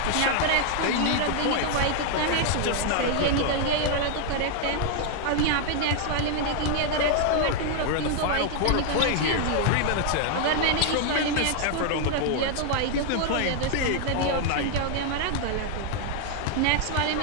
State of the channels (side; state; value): both; different; correlation 0.00